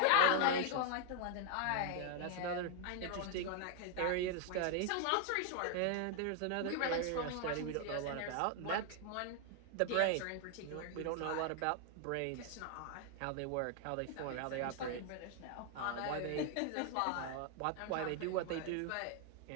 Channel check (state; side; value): different; both; correlation 0.00